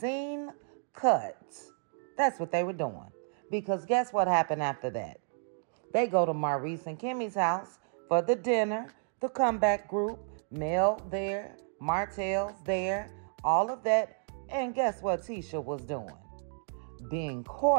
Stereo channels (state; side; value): silent; left; 57 dB below the other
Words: cuts. That's what they were doing. Because guess what happened after that? They go to Maurice and Kimmy's house for the dinner, the comeback group, Mel there, Martell's there, all of that. And guess what Tisha was doing? Being